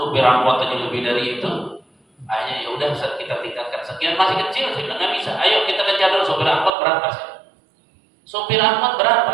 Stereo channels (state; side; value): drops out; left; at 6.7 s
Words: angkot aja lebih dari itu. Akhirnya ya udah Ustaz kita tingkatkan sekian, masih kecil. Saya bilang nggak bisa. Ayo kita kejar dulu sopir angkot berapa sih? Sopir angkot